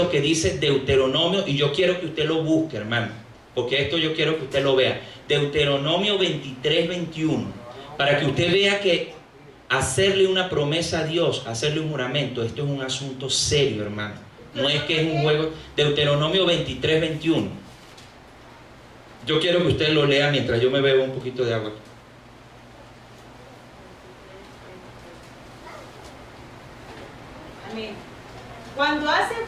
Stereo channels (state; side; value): identical; both; correlation 1.00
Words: que dice Deuteronomio, y yo quiero que usted lo busque, hermano, porque esto yo quiero que usted lo vea. Deuteronomio 23:21, para que usted vea que hacerle una promesa a Dios, hacerle un juramento, esto es un asunto serio, hermano. No es que es un juego. Deuteronomio 23:21. Yo quiero que usted lo lea mientras yo me bebo un poquito de agua. Amén. Cuando